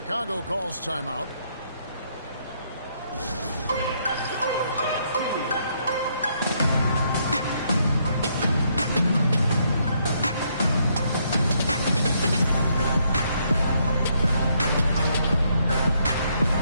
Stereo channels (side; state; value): both; inverted; correlation -0.73